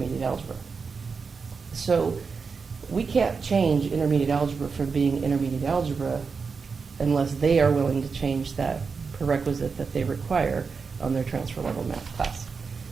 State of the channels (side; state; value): left; quieter; 5.2 dB